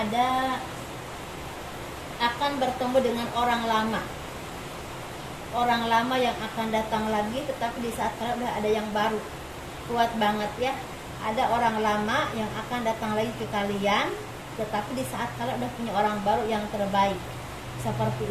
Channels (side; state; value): both; identical; correlation 1.00